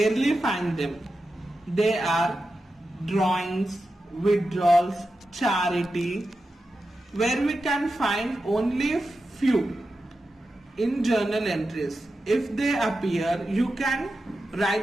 find them. They are drawings, withdrawals, charity, where we can find only few in journal entries. If they appear, you can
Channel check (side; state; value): both; normal; correlation 0.91